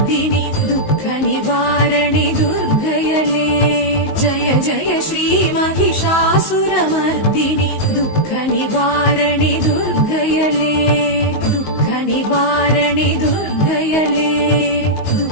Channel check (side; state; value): right; late; 19 ms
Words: துக்க நிவாரணி துர்க்கையளே. ஜய ஜய ஸ்ரீ மகிஷாசுரமர்தினி துக்க நிவாரணி துர்க்கையளே. துக்க நிவாரணி துர்க்கையளே.